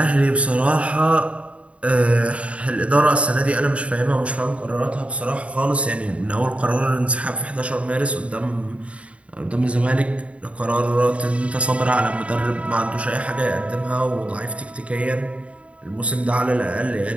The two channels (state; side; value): late; left; 0.063 ms